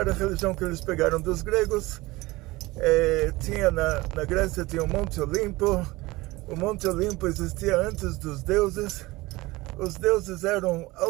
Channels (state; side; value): quieter; left; 20.8 dB